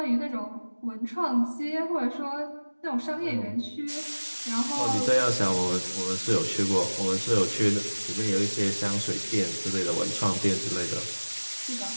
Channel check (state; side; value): inverted; both; correlation -1.00